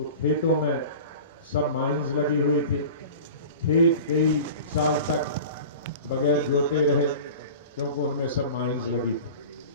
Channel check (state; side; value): inverted; both; correlation -0.37